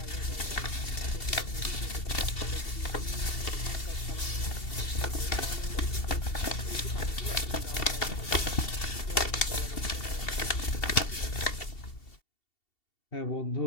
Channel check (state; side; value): late; right; 2.7 ms